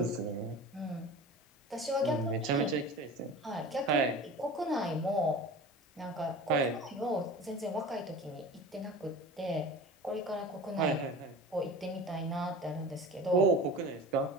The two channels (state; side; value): normal; both; correlation 0.36